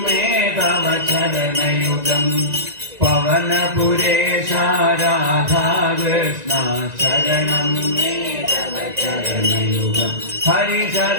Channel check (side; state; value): left; late; 1.9 ms